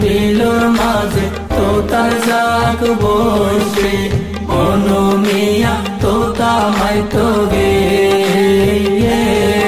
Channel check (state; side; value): identical; both; correlation 1.00